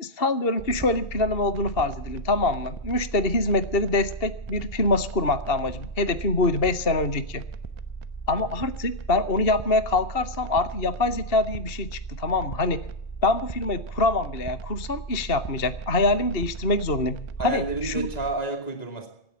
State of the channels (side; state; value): right; late; 2.7 ms